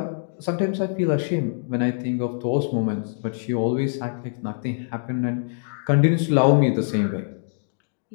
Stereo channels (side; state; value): right; silent; digital silence